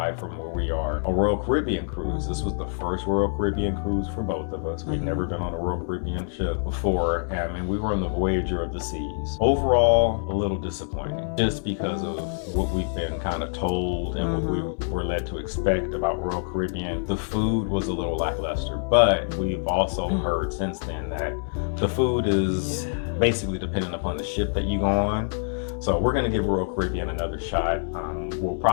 from where we are. A Royal Caribbean cruise. This was the first Royal Caribbean cruise for both of us. We'd never been on a Royal Caribbean ship before, and we were on the Voyager of the Seas. Overall, a little disappointing, just because of what we've been kind of told and what we were led to expect about Royal Caribbean. The food was a little lackluster, but we've also heard since then that the food is basically dependent upon the ship that you go on. So we're going to give Royal Caribbean another shot. We'll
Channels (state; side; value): silent; right; digital silence